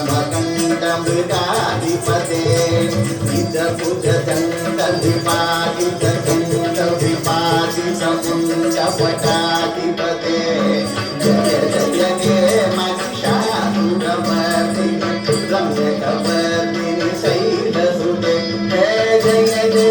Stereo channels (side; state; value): both; identical; correlation 1.00